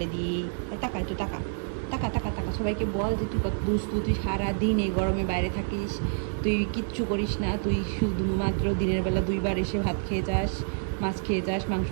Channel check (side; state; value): left; silent; 59 dB below the other